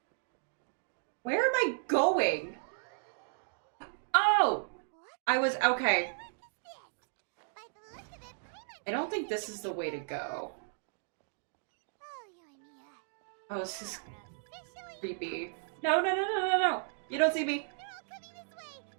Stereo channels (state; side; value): silent; left; digital silence